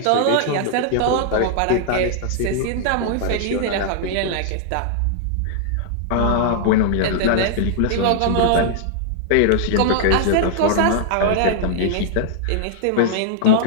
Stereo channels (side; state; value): both; different; correlation -0.01